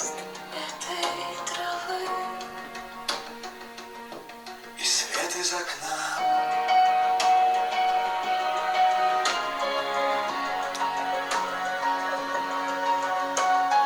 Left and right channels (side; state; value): both; identical; correlation 1.00